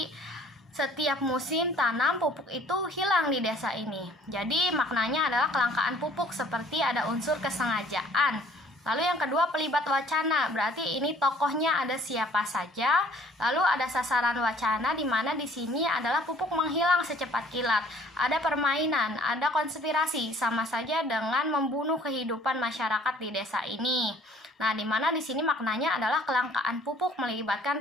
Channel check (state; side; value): normal; both; correlation 0.56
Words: setiap musim tanam pupuk itu hilang di desa ini. Jadi maknanya adalah kelangkaan pupuk, seperti ada unsur kesengajaan. Lalu yang kedua pelibat wacana, berarti ini tokohnya ada siapa saja. Lalu ada sasaran wacana, di mana di sini adalah pupuk menghilang secepat kilat. Ada permainan, ada konspirasi, sama saja dengan membunuh kehidupan masyarakat di desa ini. Nah, di mana di sini maknanya adalah kelangkaan pupuk melibatkan